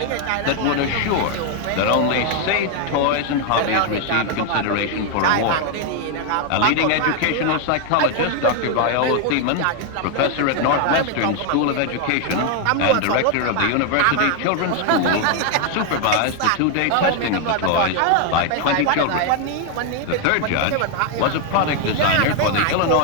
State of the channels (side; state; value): both; different; correlation 0.01